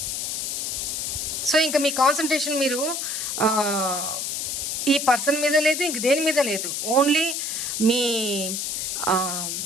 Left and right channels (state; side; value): noise; left; hiss, 2 dB below the sound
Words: సో ఇంకా మీ కాన్సన్ట్రేషన్ మీరు ఈ పర్సన్ మీద లేదు, ఇంక దేని మీద లేదు. ఓన్లీ మీ